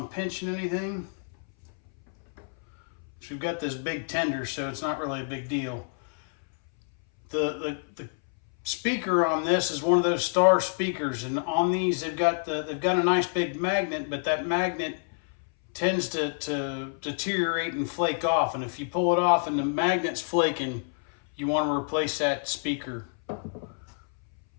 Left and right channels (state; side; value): silent; right; 59 dB below the other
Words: pinching anything. So we've got this big tender, so it's not really a big deal. The speaker on this is one of those star speakers, and on these they've got a nice big magnet, but that magnet tends to deteriorate and flake off, and if you pull it off and the magnet's flaking, you want to replace that speaker.